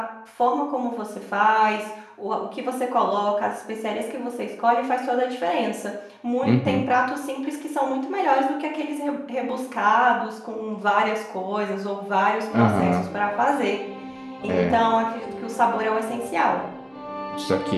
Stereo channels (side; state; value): both; identical; correlation 1.00